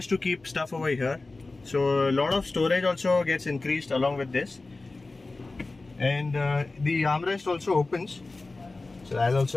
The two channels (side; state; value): right; quieter; 3.4 dB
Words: to keep stuff over here. So a lot of storage also gets increased along with this. And the armrest also opens. So I'll